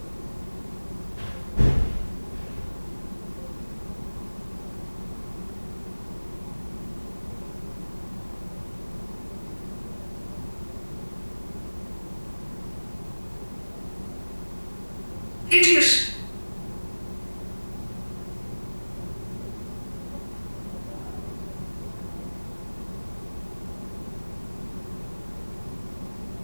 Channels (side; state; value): both; inverted; correlation -1.00